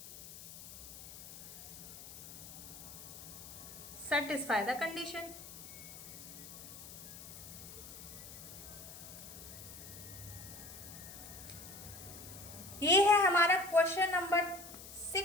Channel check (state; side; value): noise; left; hiss, 13 dB below the sound